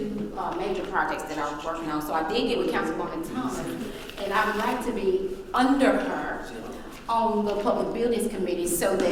major projects that I was working on. So I did get with Councilwoman Thomas, and I would like to be under her on the Public Buildings Committee so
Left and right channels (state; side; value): identical; both; correlation 1.00